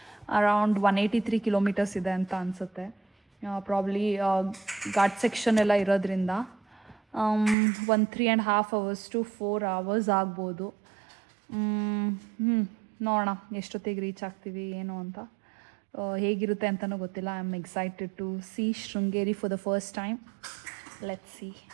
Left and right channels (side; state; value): left; drops out; at 7.6 s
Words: ಅರೌಂಡ್ 183 kilometers ಇದೆ ಅಂತ ಅನಿಸುತ್ತೆ. ಪ್ರಾಬ್ಲಿ ಘಾಟ್ ಸೆಕ್ಷನ್ ಎಲ್ಲ ಇರೋದ್ರಿಂದ ಒಂದು 3.5 hours to 4 hours ಆಗ್ಬೋದು. ನೋಡೋಣ ಎಷ್ಟೊತ್ತಿಗೆ ರೀಚ್ ಆಗ್ತೀವಿ ಏನು ಅಂತ. ಹೇಗಿರುತ್ತೆ ಅಂತಲೂ ಗೊತ್ತಿಲ್ಲ. I am excited to see Sringeri for the first time. Let's see.